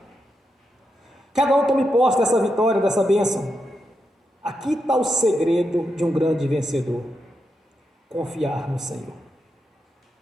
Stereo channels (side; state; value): both; normal; correlation 0.85